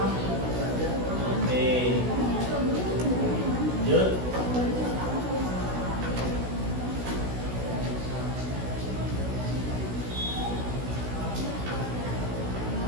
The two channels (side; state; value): left; late; 16 ms